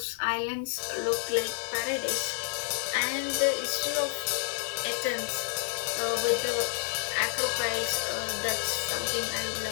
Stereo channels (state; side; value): silent; right; 58 dB below the other